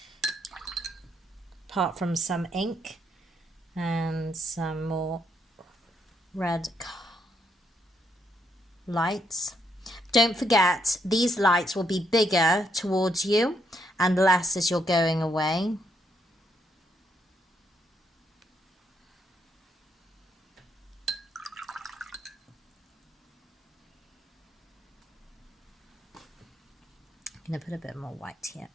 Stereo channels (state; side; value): normal; both; correlation 0.75